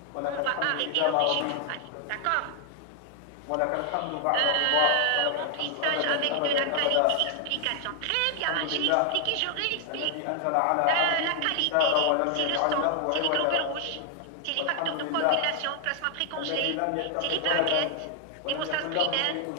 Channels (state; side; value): different; both; correlation 0.00